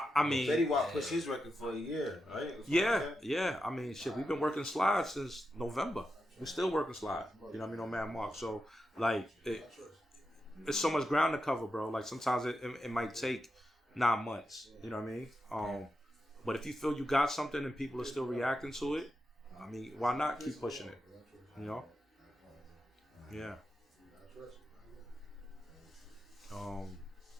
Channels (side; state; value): both; normal; correlation 0.88